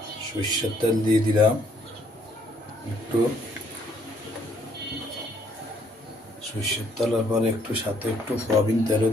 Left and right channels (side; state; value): both; normal; correlation 0.66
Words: সরষের তেল দিয়ে দিলাম, একটু সরষের তেলের পরে একটু সাথে একটু সয়াবিন তেলও